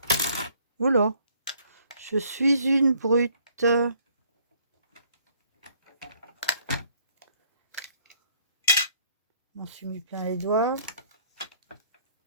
Oula, je suis une brute. Je m'en suis mis plein les doigts.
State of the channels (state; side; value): inverted; both; correlation -0.62